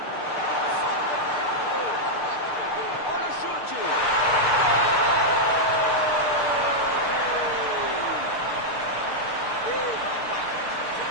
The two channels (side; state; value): right; late; 6.7 ms